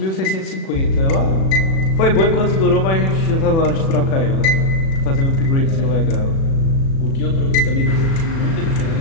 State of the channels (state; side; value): late; right; 37 ms